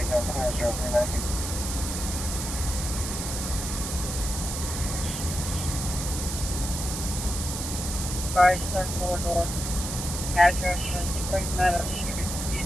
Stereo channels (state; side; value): noise; right; hiss, 5 dB below the sound